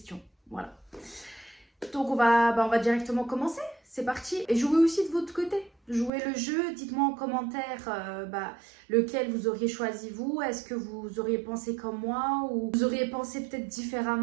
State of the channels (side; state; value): left; drops out; at 6.1 s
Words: Voilà. Donc, on va directement commencer. C'est parti. Et jouez aussi de votre côté. Jouez le jeu. Dites-moi en commentaire lequel vous auriez choisi vous. Est-ce que vous auriez pensé comme moi ou vous auriez pensé peut-être